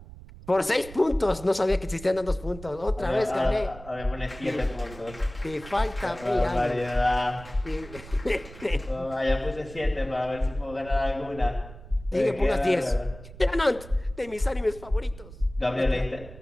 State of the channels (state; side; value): noise; right; rumble, 17 dB below the sound